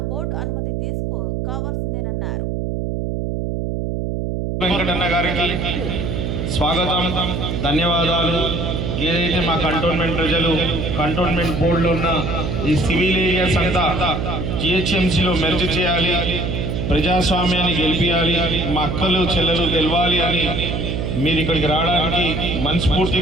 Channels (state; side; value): noise; right; hum, 2 dB below the sound